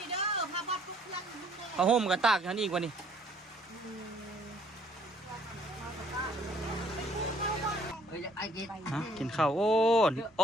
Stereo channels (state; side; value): normal; both; correlation 0.61